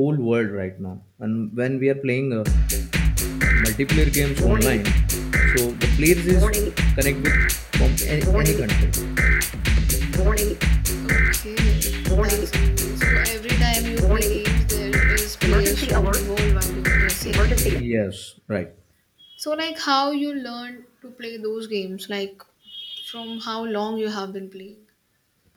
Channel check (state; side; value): identical; both; correlation 1.00